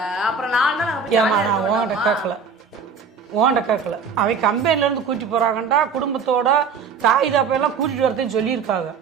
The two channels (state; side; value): quieter; left; 5.7 dB